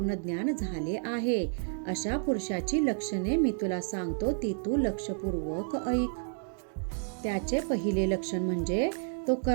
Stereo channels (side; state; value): left; silent; digital silence